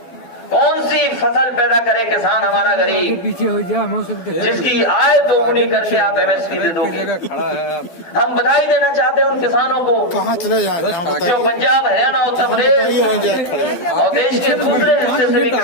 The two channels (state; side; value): late; right; 12 ms